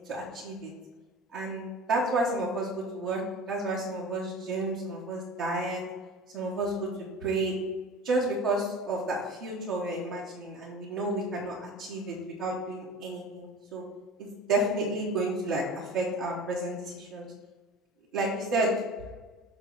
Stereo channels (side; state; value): both; normal; correlation 0.36